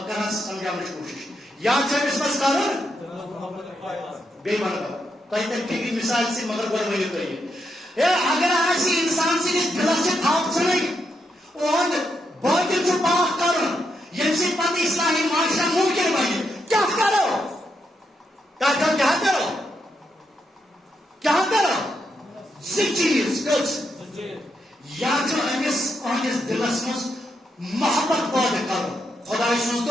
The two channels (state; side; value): normal; both; correlation 0.81